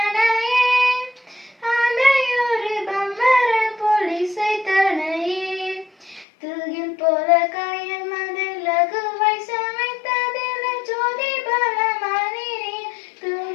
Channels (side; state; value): right; drops out; at 6.2 s